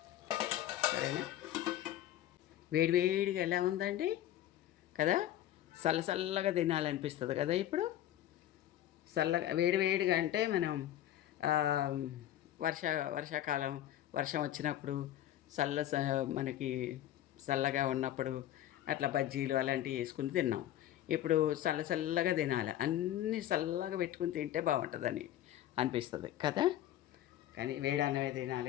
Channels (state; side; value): quieter; right; 12.7 dB